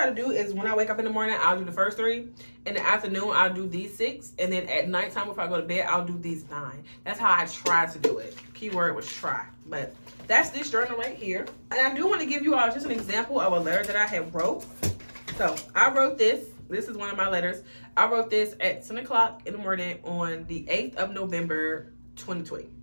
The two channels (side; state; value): both; inverted; correlation -1.00